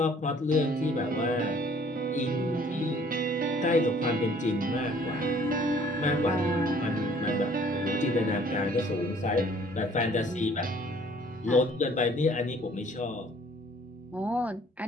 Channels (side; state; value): both; normal; correlation 0.57